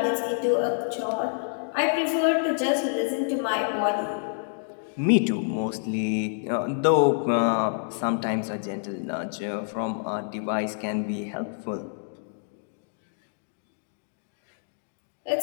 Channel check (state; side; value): silent; right; digital silence